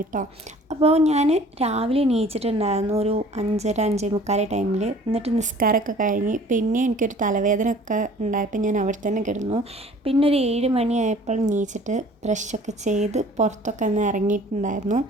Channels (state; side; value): normal; both; correlation 0.50